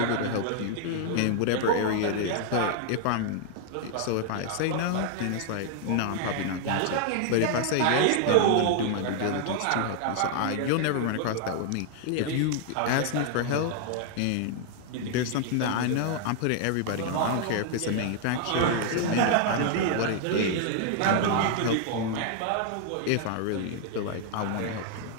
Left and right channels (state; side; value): different; both; correlation 0.00